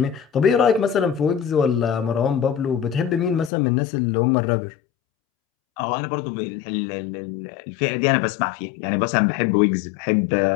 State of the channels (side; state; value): right; drops out; at 3.5 s